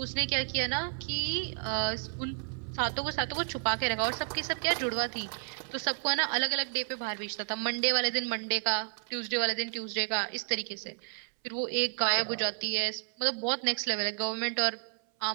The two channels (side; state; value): left; silent; 57 dB below the other